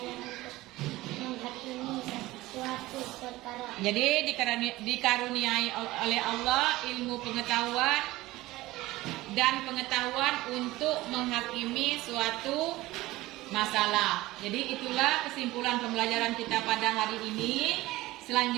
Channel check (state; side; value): quieter; left; 18.4 dB